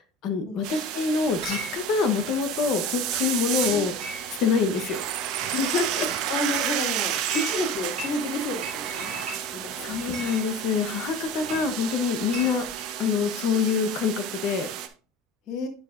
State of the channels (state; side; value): normal; both; correlation 0.36